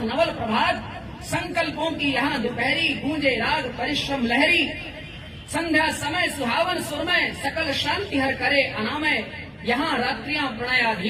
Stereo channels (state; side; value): identical; both; correlation 1.00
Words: नवल प्रभात। संकल्पों की यहाँ दोपहरी, गूंजे राग परिश्रम लहरी। संध्या समय सुहावन सुरमय, सकल शांति हर करे अनामय। यहाँ रात्रियां